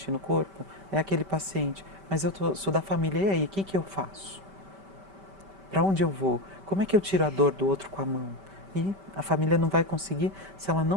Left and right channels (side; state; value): left; late; 5.1 ms